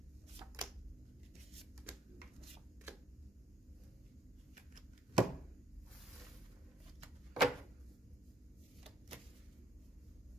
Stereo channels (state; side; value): normal; both; correlation 0.68